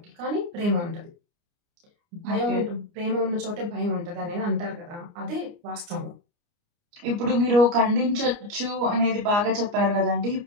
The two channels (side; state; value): left; late; 29 ms